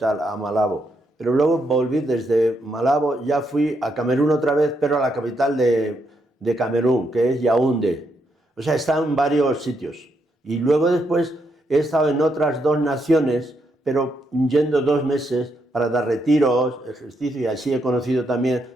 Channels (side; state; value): both; normal; correlation 0.78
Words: a Malabo, pero luego volví desde Malabo, ya fui a Camerún otra vez, pero a la capital de Camerún, que es Yaoundé. O sea, he estado en varios sitios. Y luego después he estado en otras dos naciones, pero yendo 2 meses para dar retiros, ejercicio, y así he conocido también